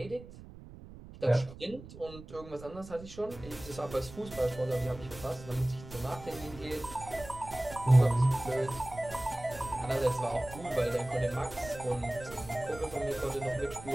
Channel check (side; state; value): right; noise; rumble, 16 dB below the sound